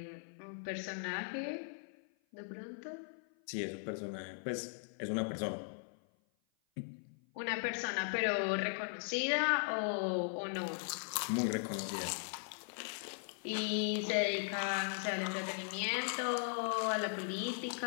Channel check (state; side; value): silent; right; 52 dB below the other